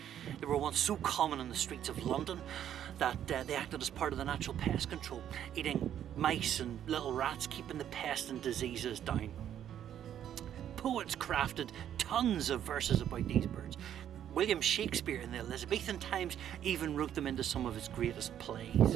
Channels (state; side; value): quieter; left; 10.3 dB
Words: They were once so common in the streets of London that they acted as part of the natural pest control, eating mice and little rats, keeping the pest and diseases down. Poets crafted tons of verses about these birds. William Shakespeare in the Elizabethan times even wrote them into some of his greatest